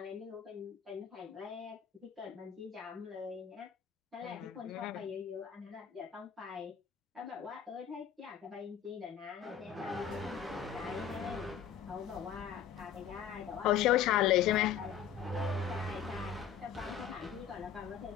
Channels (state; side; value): quieter; right; 8.6 dB